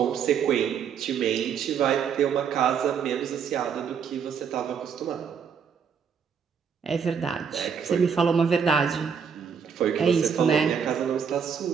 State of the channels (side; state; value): left; quieter; 6.9 dB